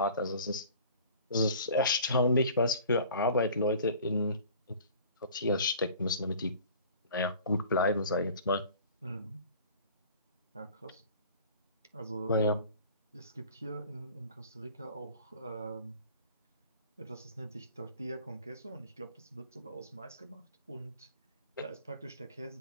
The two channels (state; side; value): inverted; both; correlation -0.46